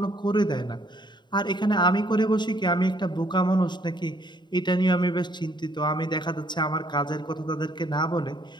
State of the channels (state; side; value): late; right; 0.22 ms